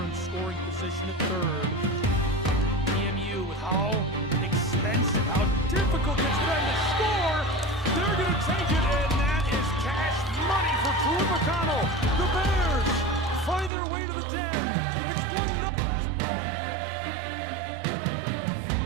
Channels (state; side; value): drops out; left; at 13.7 s